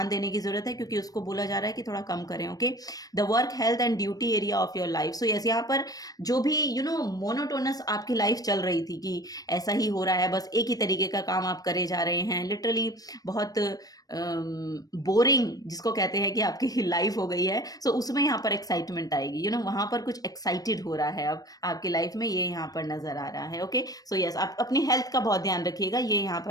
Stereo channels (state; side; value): late; right; 0.18 ms